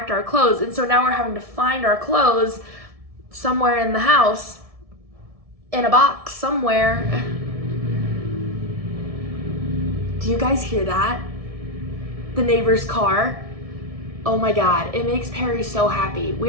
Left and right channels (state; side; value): late; left; 1.7 ms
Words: our clothes. And so now we're having to find our clothes somewhere in the house, in a box somewhere. Do you guys hear that? The neighbor's car. Oh my god, it makes Perry so happy.